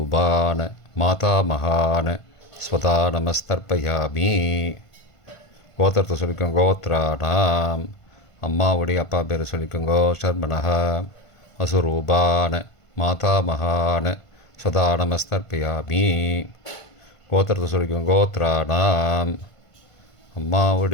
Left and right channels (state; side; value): late; right; 1.5 ms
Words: மாதாமகான ஸ்வதா நமஸ்தர்ப்பயாமி. கோத்திரத்தை சொல்லிக்கோங்க கோத்ரானாம். அம்மாவுடைய அப்பா பேரை சொல்லிக்கோங்கோ ஷர்மனஹ. வசுரூபான மாதாமகான ஸ்வதா நமஸ்தர்ப்பயாமி. கோத்திரத்தை சொல்லிக்கோங்க கோத்ரானாம்.